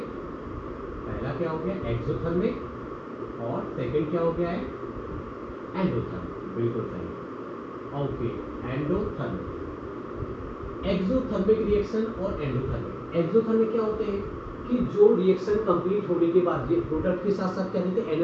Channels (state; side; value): identical; both; correlation 1.00